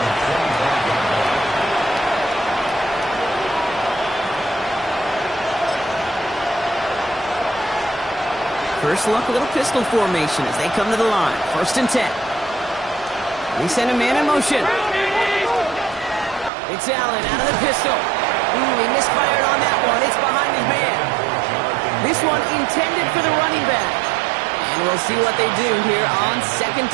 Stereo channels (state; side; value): drops out; left; at 16.5 s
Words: First look, a little pistol formation as they come to the line. 1st and 10. They send a man in motion. It's Allen out of the pistol. He misfired on that one. It's behind his man. This one intended for the running back. And we'll see what they do here on 2nd